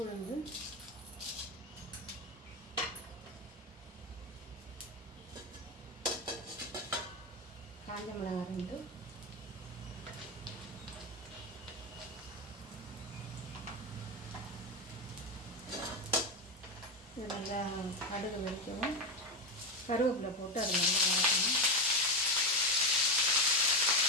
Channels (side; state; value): both; normal; correlation 0.12